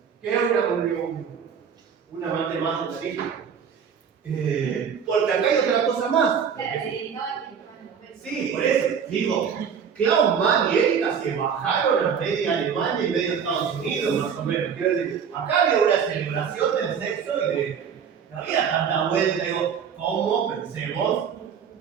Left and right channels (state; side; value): quieter; left; 7.2 dB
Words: Que es un amante más de la lista. Porque acá hay otra cosa más. Sí, por eso. Digo, Klaus Mann y Erika se bajaron a media Alemania y media Estados Unidos, más o menos. Quiero decir, acá había una celebración del sexo y no había tanta vuelta. Digo, ¿cómo pensemos